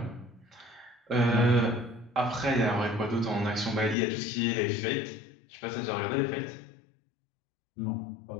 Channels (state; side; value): drops out; right; at 4.0 s